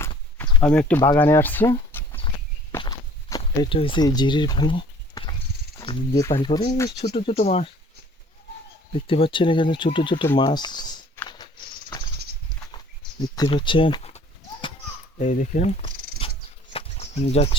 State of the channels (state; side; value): normal; both; correlation 0.52